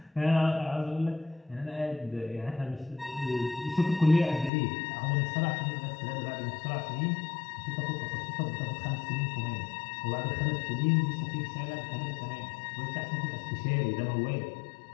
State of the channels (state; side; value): drops out; right; at 4.5 s